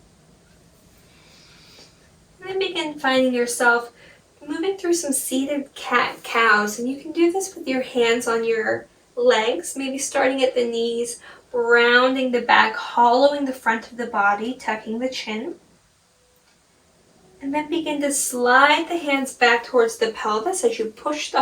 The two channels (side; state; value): both; identical; correlation 1.00